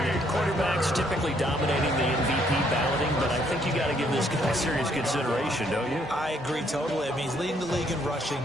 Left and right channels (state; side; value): normal; both; correlation 0.68